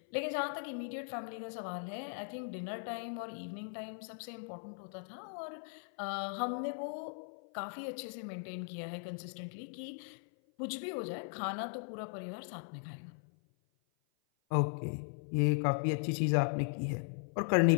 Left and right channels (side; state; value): right; silent; 52 dB below the other